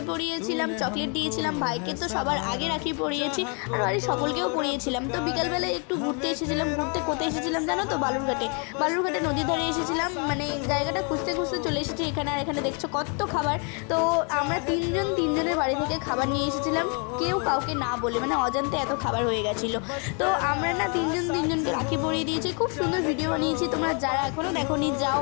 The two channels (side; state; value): right; quieter; 36.7 dB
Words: পরিয়েছিলাম, চকলেট দিয়েছিলাম, ভাইকে তো সবার আগে রাখি পরিয়েছি, আর বাড়ির সকলকেও পরিয়েছিলাম। তো বিকালবেলায় একটু ঘুরতে এসেছিলাম। ঘুরতে কোথায় এসেছিলাম জানো তো? বালুরঘাটে নদীর ধারে এসেছিলাম। মানে জায়গাটা খুঁজতে খুঁজতে চলে এসেছি এখানে। আর এখানে দেখছো কত খাবার। তো আমরা তিনজনের বাড়ি থেকে খাবার নিয়ে এসেছিলাম, কেউ কাউকে না বলে, মানে অজান্তে এত খাবার হয়ে গেছিলো। তো আমরা না তিনজনকে রাখি পরিয়ে দিয়েছি। খুব সুন্দর ভিডিও বানিয়েছি। তোমরা যারা এখনও দেখোনি যাও,